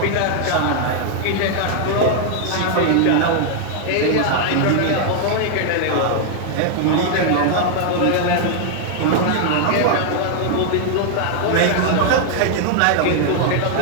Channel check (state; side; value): different; both; correlation 0.00